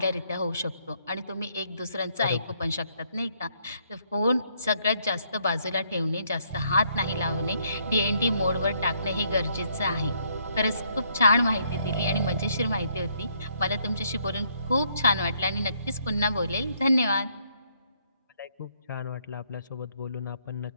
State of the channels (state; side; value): inverted; both; correlation -0.70